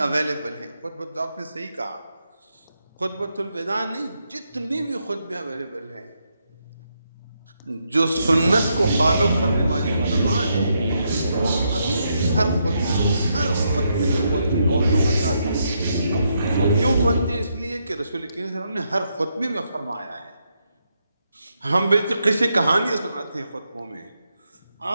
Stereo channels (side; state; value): both; inverted; correlation -0.80